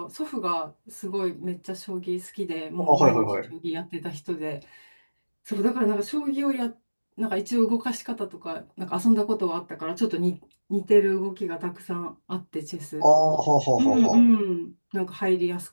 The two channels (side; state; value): both; inverted; correlation -1.00